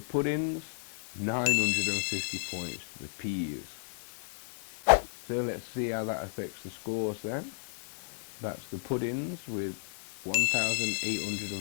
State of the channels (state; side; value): silent; right; digital silence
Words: 950 points to the peas. So let's see how that affects the scores then. That's the puddings with